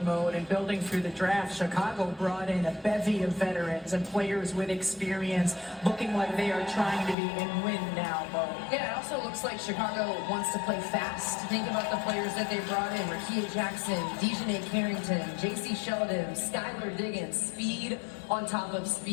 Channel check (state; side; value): drops out; right; at 7.2 s